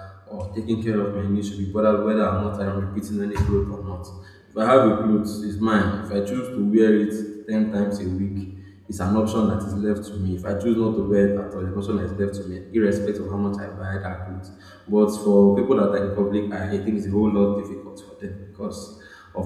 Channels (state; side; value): identical; both; correlation 1.00